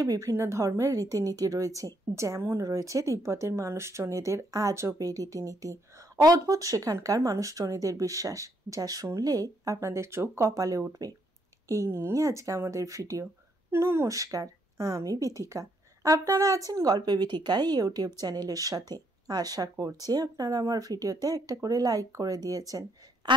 বিভিন্ন ধর্মের রীতিনীতি রয়েছে, যেমন রয়েছে তিব্বতের মানুষজনেদের আজব এই রীতিনীতি। অদ্ভুত সেখানকার মানুষজনেদের বিশ্বাস, যা শুনলে আপনাদের চোখ কপালে উঠবে। এই নিয়ে আজকে আমাদের ভিডিও। নমস্কার, আমি বিথিকা। আপনারা আছেন গল্পে বিথিকা ইউটিউব চ্যানেলের সাথে। আশা করছি আপনারা আমার ভিডিওতে একটা করে লাইক করে দিয়েছেন।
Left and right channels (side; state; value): both; normal; correlation 0.73